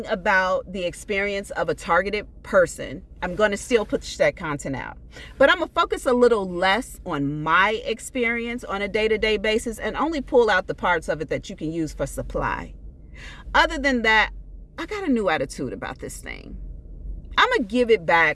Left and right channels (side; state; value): both; identical; correlation 1.00